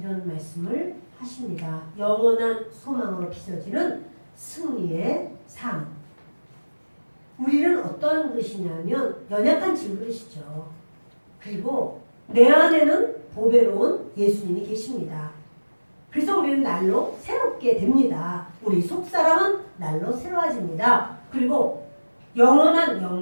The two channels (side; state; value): both; inverted; correlation -1.00